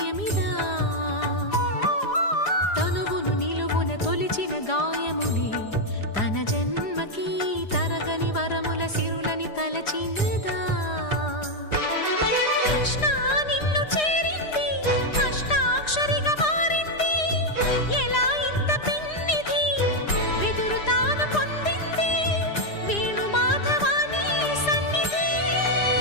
తనువును నిలువున తొలిచిన గాయములే తన జన్మకి తరగని వరముల సిరులని తలచినదా కృష్ణ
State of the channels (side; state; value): right; late; 4.9 ms